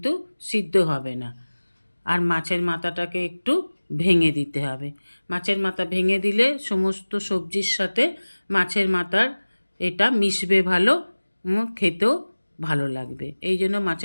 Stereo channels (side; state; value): both; inverted; correlation -1.00